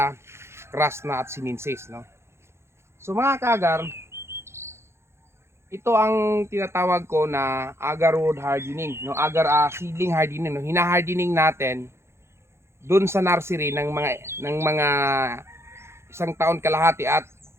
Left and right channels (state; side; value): late; left; 0.13 ms